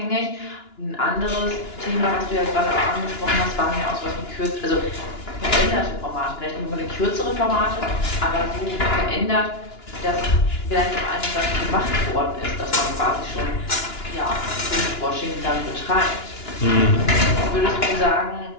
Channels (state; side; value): late; right; 2.9 ms